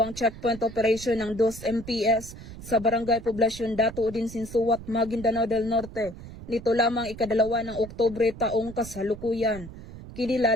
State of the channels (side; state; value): right; noise; rumble, 14 dB below the sound